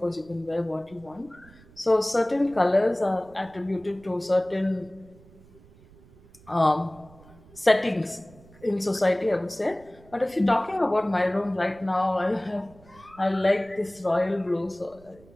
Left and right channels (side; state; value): right; noise; rumble, 25 dB below the sound